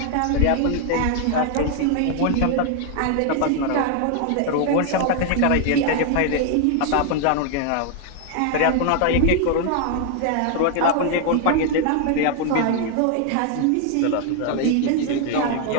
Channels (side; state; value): both; different; correlation 0.00